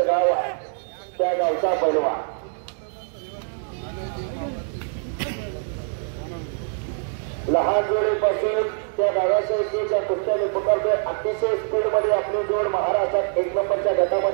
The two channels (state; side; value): silent; left; digital silence